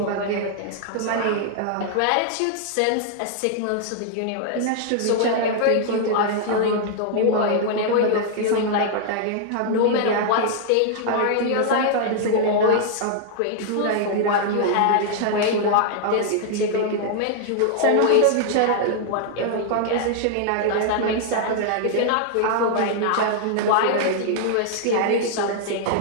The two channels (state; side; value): different; both; correlation -0.01